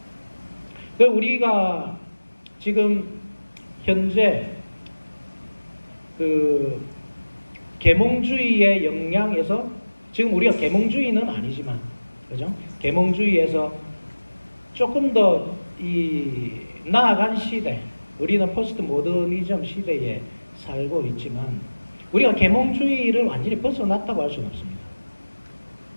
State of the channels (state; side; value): inverted; both; correlation -1.00